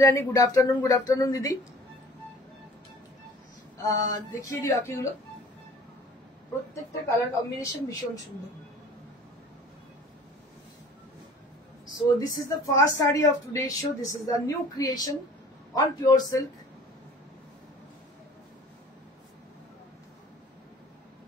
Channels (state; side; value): normal; both; correlation 0.47